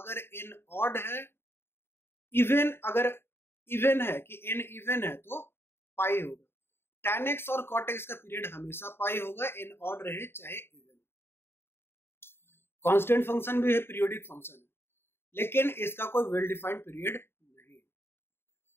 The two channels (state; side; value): late; right; 0.11 ms